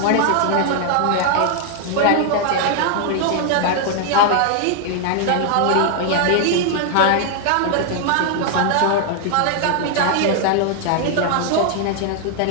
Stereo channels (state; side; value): different; both; correlation 0.00